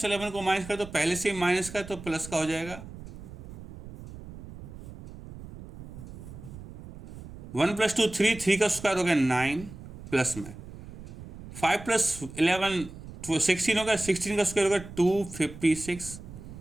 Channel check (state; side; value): noise; right; rumble, 14 dB below the sound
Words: को माइनस कर दो, पहले से ही माइनस का है तो प्लस का हो जाएगा। 1 + 2 3, 3 का स्क्वायर हो गया 9 प्लस में 5 + 11 16 होगा, 16 का स्क्वायर होगा 256